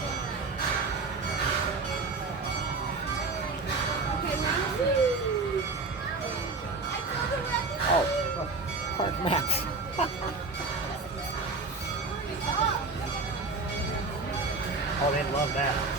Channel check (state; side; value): quieter; left; 3.8 dB